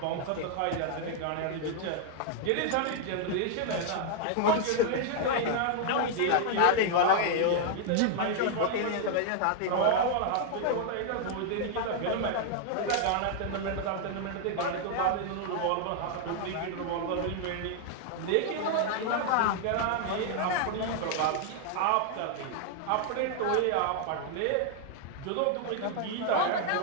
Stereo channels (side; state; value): both; different; correlation 0.00